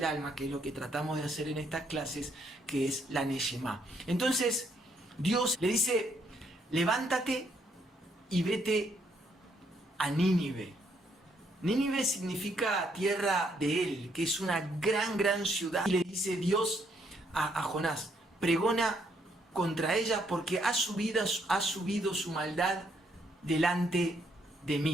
alma, que es lo que tratamos de hacer en estas clases, que es la Neshama. Entonces, Dios le dice, levántate y vete a Nínive. Nínive significa tierra de él, que es una gran ciudad. Y le dice Dios a Jonás, pregona contra ella porque ha subido su maldad delante de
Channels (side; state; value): both; normal; correlation 0.72